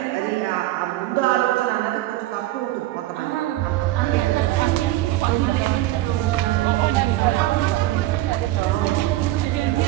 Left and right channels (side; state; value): left; quieter; 16.2 dB